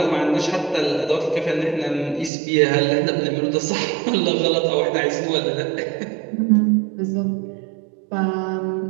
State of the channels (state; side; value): drops out; left; at 2.3 s